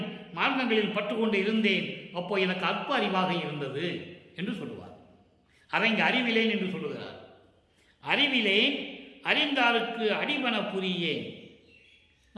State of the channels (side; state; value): both; identical; correlation 1.00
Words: மார்க்கங்களில் பற்றுக்கொண்டு இருந்தேன். அப்போ எனக்கு அற்ப அறிவாக இருந்தது என்று சொல்லுவார். அதை இங்கு அறிவிலேன் என்று சொல்லுகிறார். அறிவிலேன் அறிந்தாருக்கு அடிவன புரியேன்.